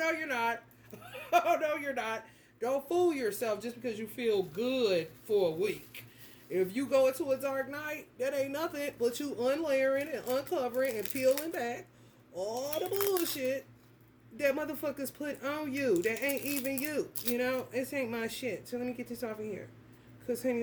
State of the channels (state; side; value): identical; both; correlation 1.00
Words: you're not. Oh, no, you're not. Don't fool yourself just because you feel good for a week. If you go into a dark night, that ain't nothing but you unlayering and uncovering and peeling back all the bullshit that motherfuckers put on you that ain't even you. You know, this ain't my shit. So let me get this off of here. Because, honey,